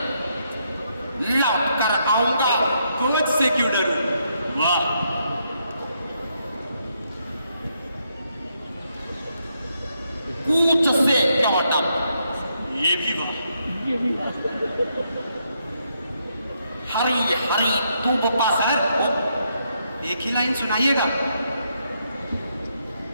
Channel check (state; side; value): inverted; both; correlation -0.77